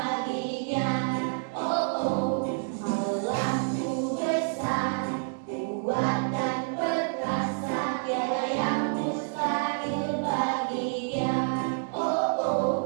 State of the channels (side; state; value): left; silent; digital silence